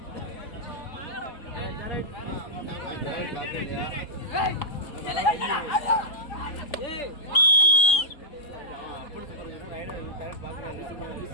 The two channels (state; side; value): late; right; 3.7 ms